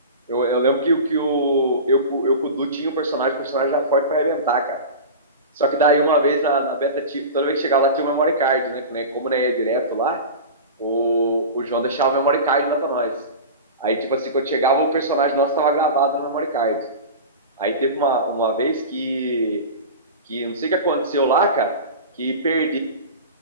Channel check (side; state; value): both; inverted; correlation -0.30